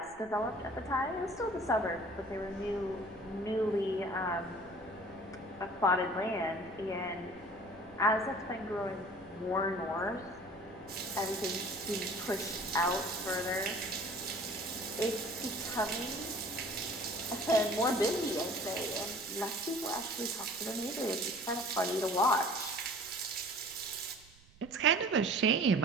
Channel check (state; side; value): noise; right; rumble, 25 dB below the sound